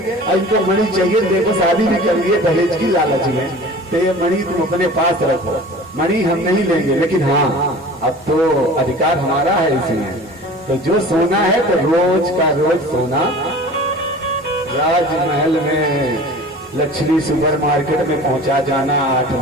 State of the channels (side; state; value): both; normal; correlation 0.41